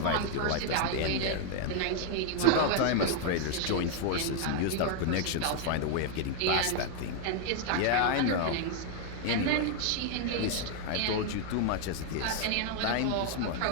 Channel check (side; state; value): both; different; correlation 0.00